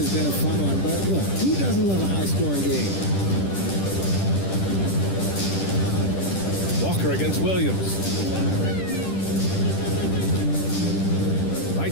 been a fun one, but look, who doesn't love a high-scoring game? Walker against Williams. Right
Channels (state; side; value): late; right; 10 ms